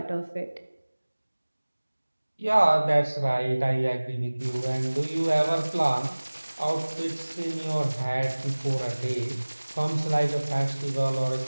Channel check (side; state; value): both; inverted; correlation -1.00